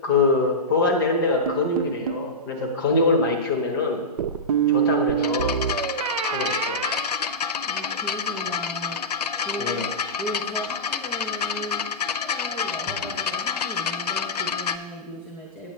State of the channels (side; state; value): both; normal; correlation -0.14